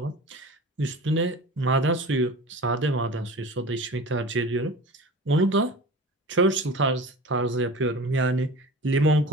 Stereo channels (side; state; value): both; normal; correlation 0.36